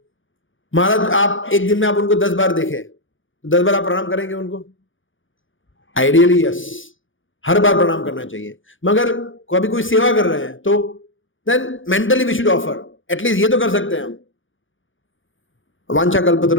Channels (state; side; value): late; right; 0.57 ms